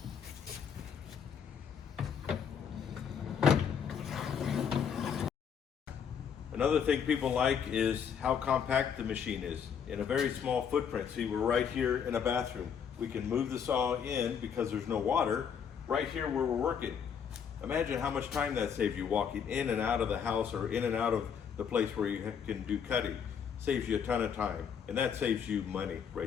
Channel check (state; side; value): quieter; right; 7.5 dB